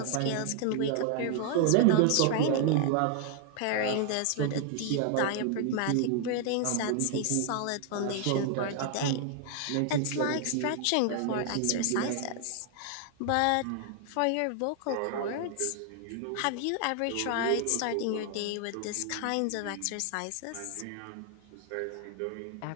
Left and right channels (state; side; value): different; both; correlation 0.00